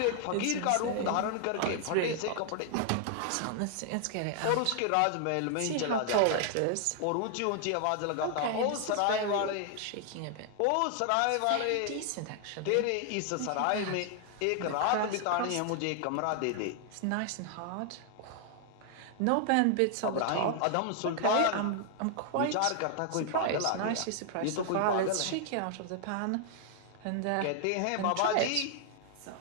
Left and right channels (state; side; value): different; both; correlation 0.00